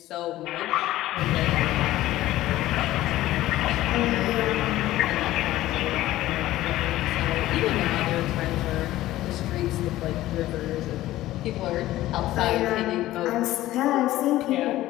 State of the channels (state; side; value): quieter; right; 15.5 dB